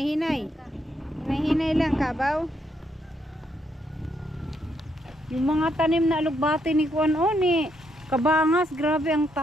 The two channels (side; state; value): both; normal; correlation 0.76